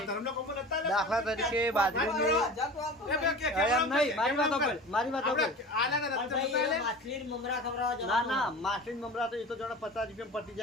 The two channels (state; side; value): normal; both; correlation 0.36